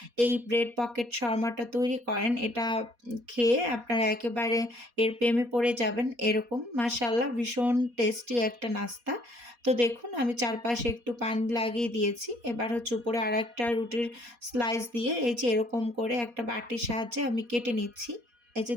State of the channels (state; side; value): late; left; 4.2 ms